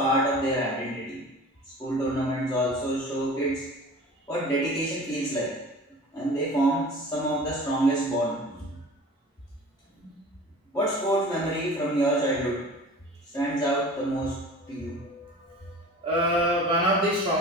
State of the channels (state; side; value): normal; both; correlation 0.41